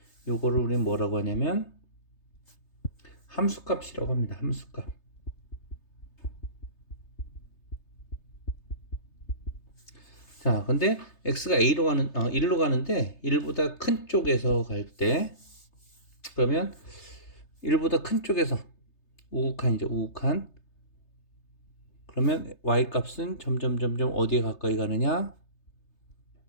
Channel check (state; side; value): late; right; 3.3 ms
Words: 요거를 우리는 뭐라고 하냐면 함수값이라고 합니다. 함수값. 자, 근데 x가 a로 가는 1로 가는데 1보다 큰 쪽에서 갈 때, 그러면 1보다 큰 쪽에서 우극한이죠. 우극한. 그러면 y 값은 점점 어디에 가까이 가느냐?